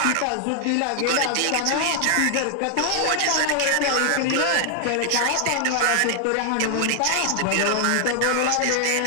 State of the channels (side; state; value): both; different; correlation 0.00